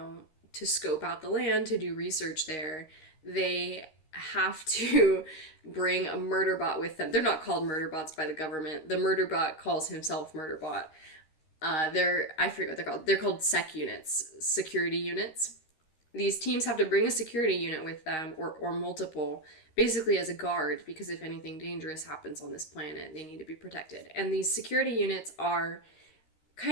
scope out the land, to do research there, they have to bring a murderbot with them. They're not called murderbots by the government. The murderbot calls himself murderbot. I forget what they're called. They're called sec units, security units. These teams have to bring a security unit with them, or multiple, basically as a guard, because if anything dangerous happens on this planet, they need to be protected. And these security units are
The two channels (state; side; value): late; right; 13 ms